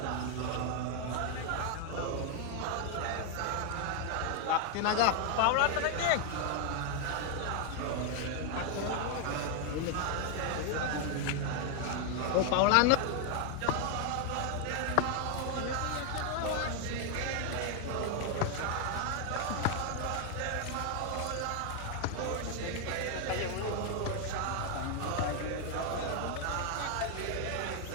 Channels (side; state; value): both; different; correlation 0.00